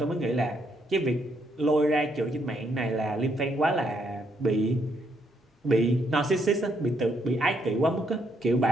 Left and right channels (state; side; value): normal; both; correlation 0.74